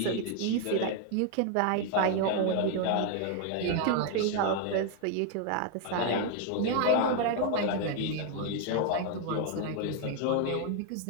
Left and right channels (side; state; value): both; different; correlation 0.00